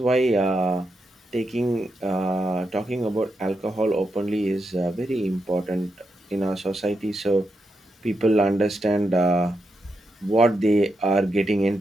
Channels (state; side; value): normal; both; correlation 0.84